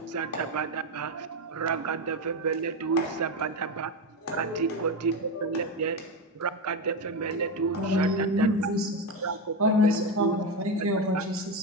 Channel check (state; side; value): normal; both; correlation 0.14